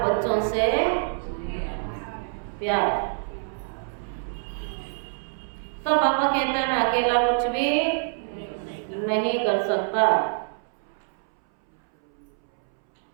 बच्चों से प्यार। तो पापा कहता है मैं अकेला कुछ भी नहीं कर सकता।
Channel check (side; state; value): left; silent; 61 dB below the other